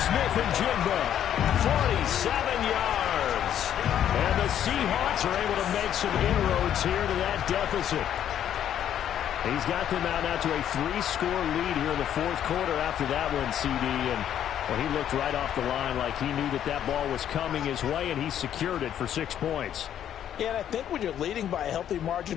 47 yards. And the Seahawks are able to make some inroads here to that deficit. He's got them out now to a 3-score lead here in the 4th quarter after that one, CD. And well, he looked right off the line like he knew that that ball was coming his way, and he secured it for 6 points. Yeah, and I think when you're leading by a healthy margin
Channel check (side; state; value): right; quieter; 10.2 dB